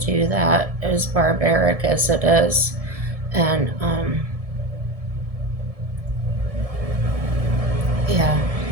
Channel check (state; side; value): late; left; 1.7 ms